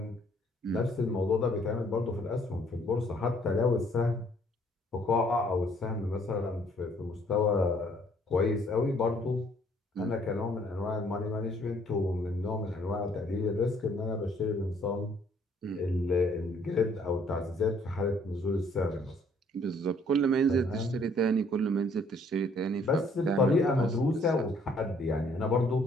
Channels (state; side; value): normal; both; correlation 0.63